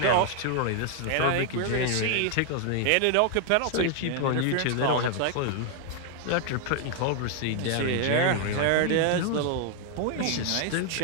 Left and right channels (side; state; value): both; different; correlation 0.00